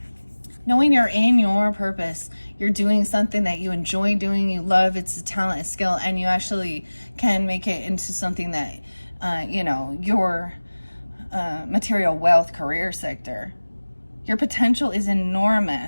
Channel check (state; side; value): inverted; both; correlation -1.00